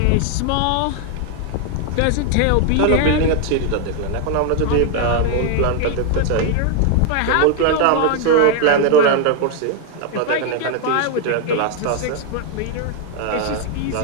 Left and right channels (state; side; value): different; both; correlation 0.00